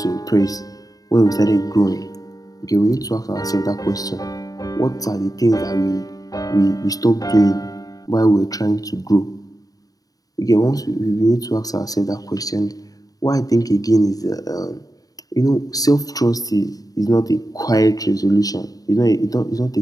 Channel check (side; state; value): right; late; 0.18 ms